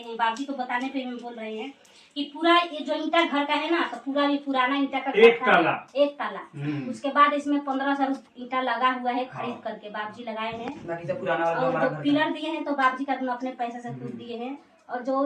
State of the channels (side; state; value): both; identical; correlation 1.00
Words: बाबूजी को बताने पे हम बोल रहे हैं कि पूरा ये जो ईंटा घर का है ना, तो पूरा भी पुराना ईंटा का एक ताला। एक ताला। उसके बाद इसमें 1500 ईंटा लगा हुआ है खरीद करके बाबूजी लगाए हैं। बाकी सब पुराना वाला और हमारा जो घर पिलर दिए हैं तो बाबूजी का अपने पैसे से खुद दिए हैं। और जो